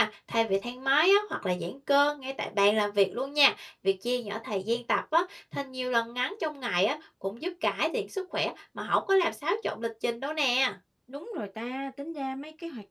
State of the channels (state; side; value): identical; both; correlation 1.00